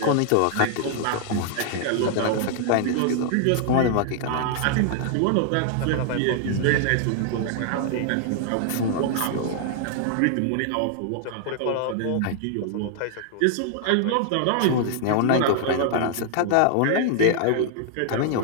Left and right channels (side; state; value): both; different; correlation 0.00